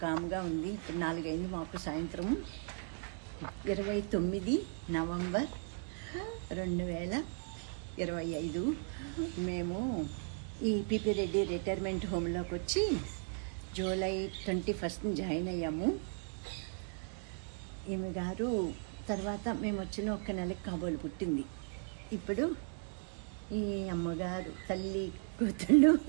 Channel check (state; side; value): silent; left; 53 dB below the other